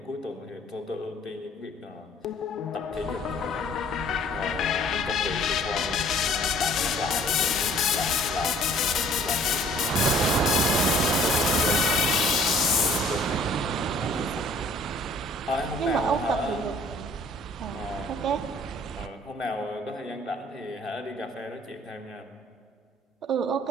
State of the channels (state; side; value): normal; both; correlation 0.56